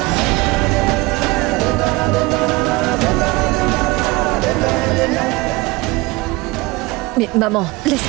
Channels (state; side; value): quieter; left; 22.2 dB